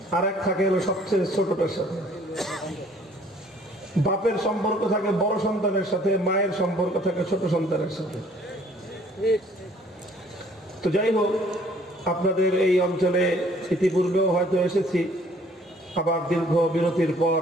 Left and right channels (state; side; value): normal; both; correlation 0.58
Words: আর এক থাকে হলো সবচেয়ে ছোটটার সাথে বাপের সম্পর্ক থাকে বড় সন্তানের সাথে মায়ের সম্পর্ক থাকে ছোট সন্তানের সাথে তো যাই হোক আপনাদের এই অঞ্চলে ইতিপূর্বেও হয়তো এসেছি আবার দীর্ঘ বিরতির পর